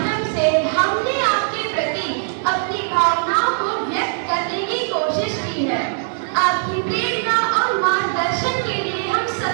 से हमने आपके प्रति अपनी भावनाओं को व्यक्त करने की कोशिश की है। आपकी प्रेरणा और मार्गदर्शन के लिए हम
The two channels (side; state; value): left; silent; digital silence